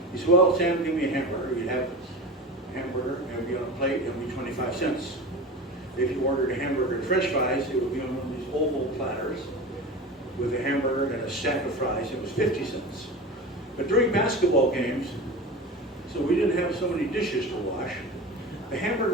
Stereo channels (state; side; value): normal; both; correlation 0.30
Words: you said, "Well, Sam, give me a hamburger." You'd have a hamburger, and it would be on a plate, and it would be 25 cents. If you ordered a hamburger and french fries, it would be on one of these oval platters with a hamburger and a stack of fries. It was 50 cents. But during basketball games, so we didn't have so many dishes to wash, the